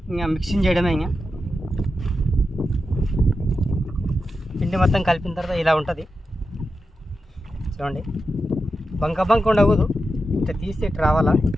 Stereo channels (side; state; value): both; normal; correlation 0.89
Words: ఇంకా మిక్సింగ్ చేయడమే. ఇంకా పిండి మొత్తం కలిపిన తర్వాత ఇలా ఉంటుంది. చూడండి, బంక ఉండకూడదు. ఇట్లా తీస్తే ఇట్లా రావాలా.